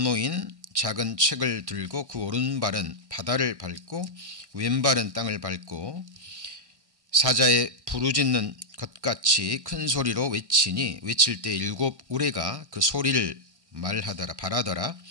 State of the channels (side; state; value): left; late; 1.2 ms